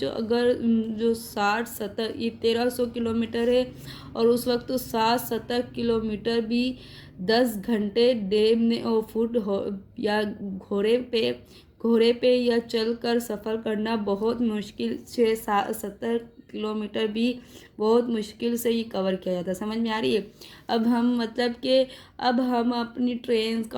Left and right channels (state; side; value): identical; both; correlation 1.00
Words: अगर जो 60-70 ये 1300 किलोमीटर है और उस वक्त तो 60-70 किलोमीटर भी 10 घंटे डे में और फुट हो या घोड़े पे या चल कर सफ़र करना बहुत मुश्किल। 6-70 किलोमीटर भी बहुत मुश्किल से ये कवर किया जाता है। समझ में आ रही है। अब हम मतलब कि अब हम अपनी ट्रेन